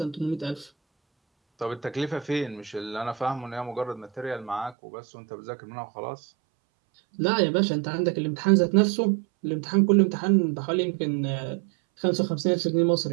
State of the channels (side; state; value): left; drops out; at 4.8 s